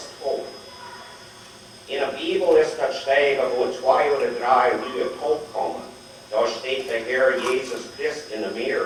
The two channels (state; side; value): identical; both; correlation 1.00